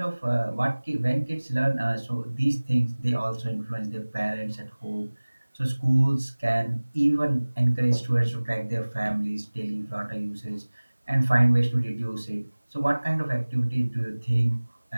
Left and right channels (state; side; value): inverted; both; correlation -1.00